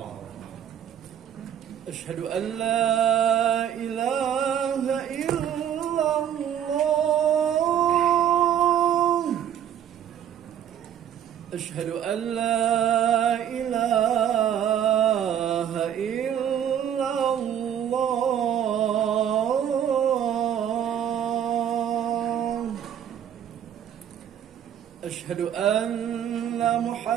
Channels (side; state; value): left; quieter; 9.7 dB